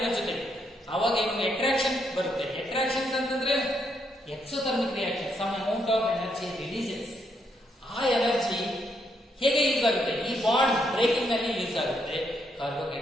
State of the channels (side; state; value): both; normal; correlation 0.76